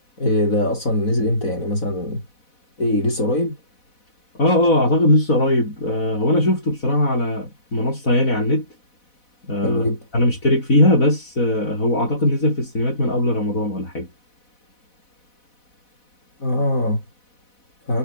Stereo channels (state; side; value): late; right; 4.1 ms